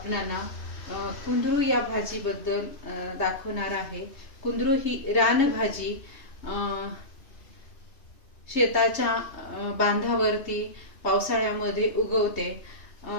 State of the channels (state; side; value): late; right; 3.3 ms